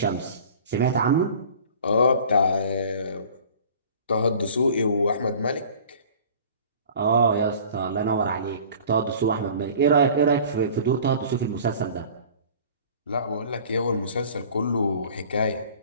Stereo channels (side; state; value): both; inverted; correlation -0.46